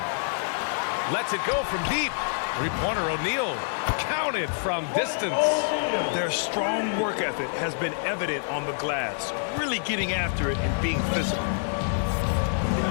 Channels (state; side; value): silent; right; digital silence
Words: Lets it go from deep. Three-pointer O'Neal. Counted from distance. Their strong work ethic has been evident on the glass. Really getting after it and being physical.